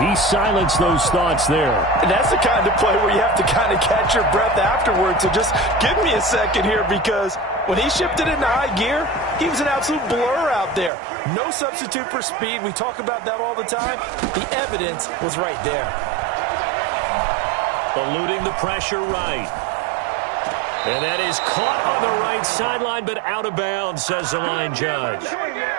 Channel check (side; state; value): left; drops out; at 10.9 s